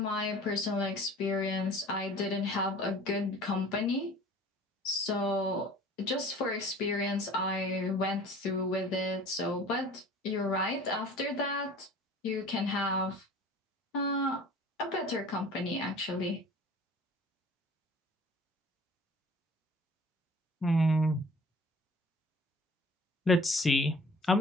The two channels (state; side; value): normal; both; correlation 0.46